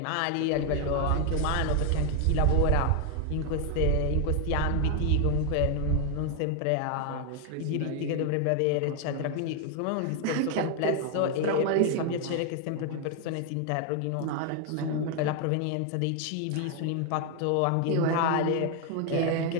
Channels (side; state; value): both; different; correlation 0.01